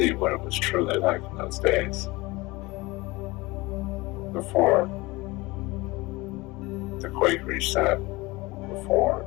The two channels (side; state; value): right; quieter; 22.2 dB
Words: what it was truly like in those days. Before the quake reset, before